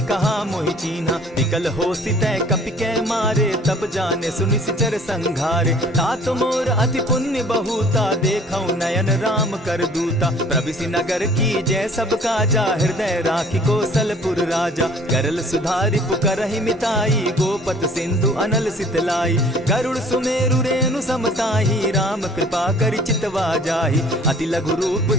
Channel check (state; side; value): normal; both; correlation 0.53